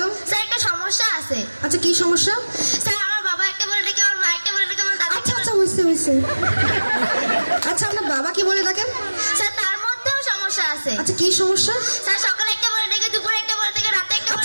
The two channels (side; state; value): both; inverted; correlation -1.00